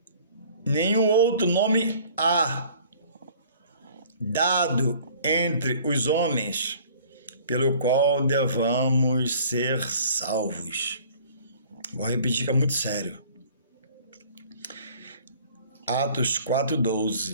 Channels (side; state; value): both; inverted; correlation -0.52